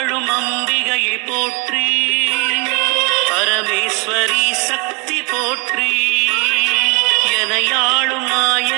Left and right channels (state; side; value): quieter; left; 29.3 dB